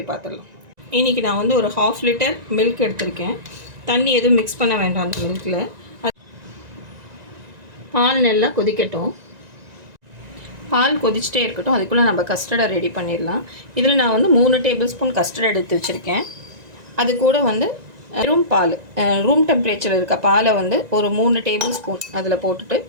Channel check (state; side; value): late; left; 1.9 ms